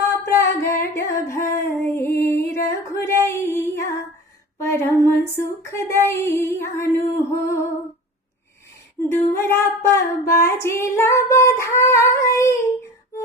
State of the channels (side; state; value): both; normal; correlation 0.35